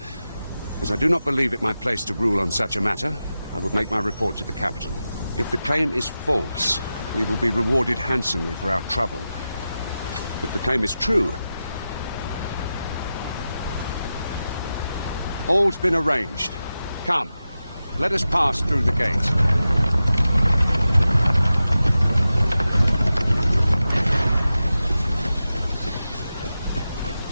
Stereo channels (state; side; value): inverted; both; correlation -0.92